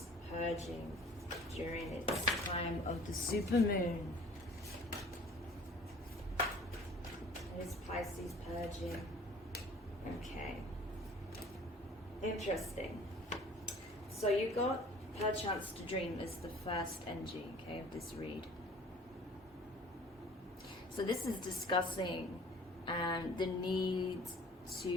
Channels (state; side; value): normal; both; correlation 0.49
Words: purging during its time of the supermoon? What is Pisces purging? Okay. Interesting. So you got perchance to dream as the first energy, okay, of this read. So this is discussing the need